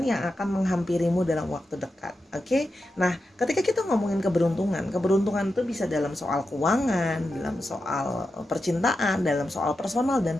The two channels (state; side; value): normal; both; correlation 0.89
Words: yang akan menghampirimu dalam waktu dekat. Oke, nah ketika kita ngomongin keberuntungan itu bisa dalam soal keuangan, dalam soal percintaan, dalam soal personal dan